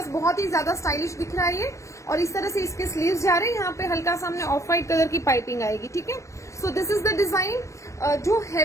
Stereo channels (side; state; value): right; late; 0.15 ms